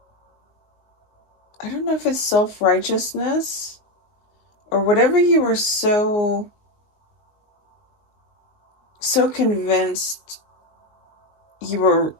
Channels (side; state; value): right; late; 19 ms